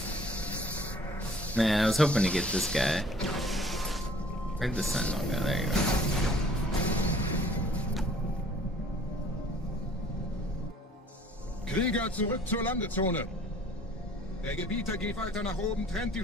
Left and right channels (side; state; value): both; normal; correlation 0.53